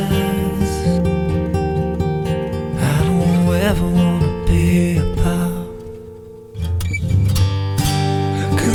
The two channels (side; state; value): both; identical; correlation 1.00